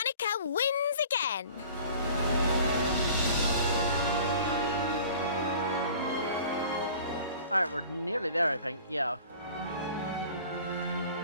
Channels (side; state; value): both; inverted; correlation -0.46